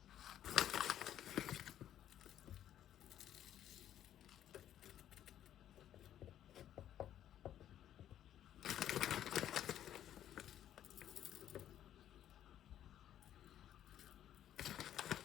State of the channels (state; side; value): quieter; right; 11.2 dB